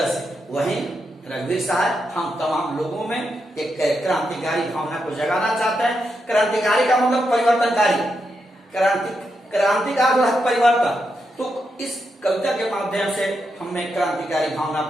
से। वहीं रघुवीर साहब हम तमाम लोगों में एक क्रांतिकारी भावना को जगाना चाहते हैं। क्रांतिकारी का मतलब परिवर्तनकारी, क्रांति का मतलब परिवर्तन। तो इस कविता के माध्यम से हमें क्रांतिकारी भावना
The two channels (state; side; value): normal; both; correlation 0.84